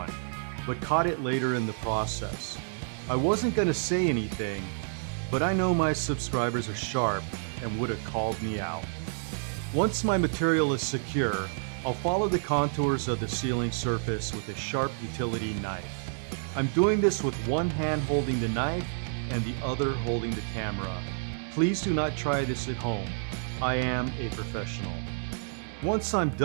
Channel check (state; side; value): silent; left; digital silence